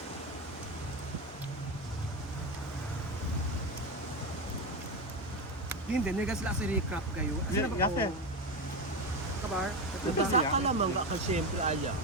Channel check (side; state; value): both; normal; correlation 0.16